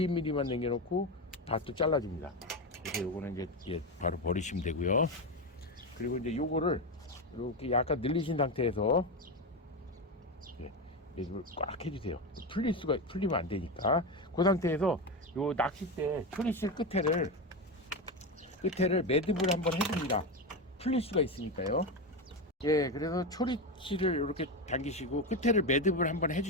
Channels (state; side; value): normal; both; correlation 0.15